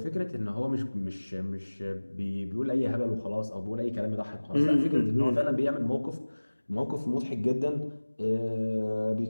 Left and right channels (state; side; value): inverted; both; correlation -1.00